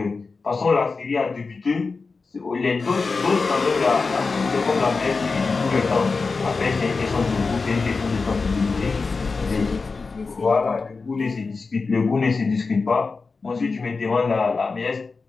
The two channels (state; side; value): quieter; right; 4.3 dB